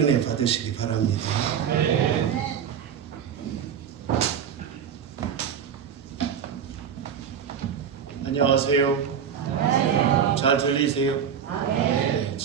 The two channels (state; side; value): quieter; left; 8.0 dB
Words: 은혜 받으시기 바랍니다. 안녕하세요. 잘 들리세요? 네,